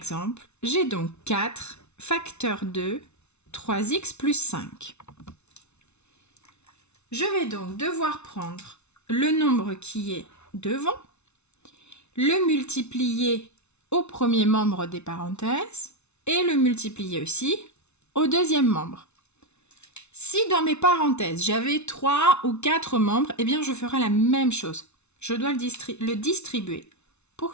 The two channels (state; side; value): late; right; 0.81 ms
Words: j'ai donc 4 facteur 2, 3x plus 5. Je vais donc devoir prendre le nombre qui est devant, le multiplier au premier membre des parenthèses et le multiplier aussi au deuxième membre. Si dans mes parenthèses j'avais 3 ou 4 membres, eh bien je ferai la même chose. Je dois le distribuer